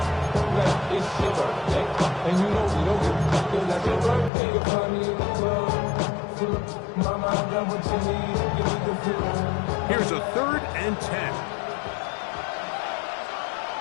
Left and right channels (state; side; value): drops out; right; at 4.3 s